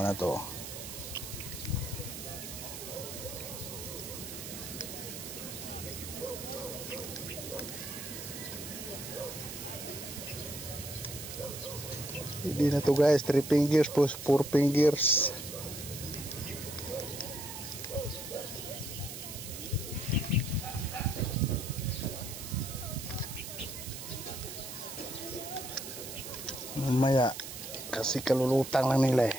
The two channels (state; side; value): noise; right; hiss, 9 dB below the sound